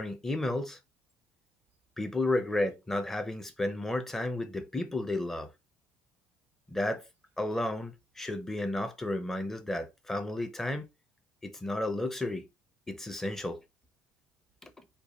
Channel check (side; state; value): both; normal; correlation 0.88